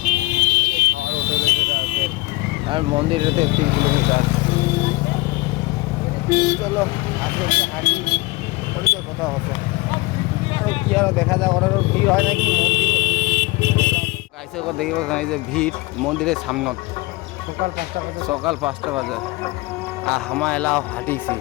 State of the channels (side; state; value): right; quieter; 22.1 dB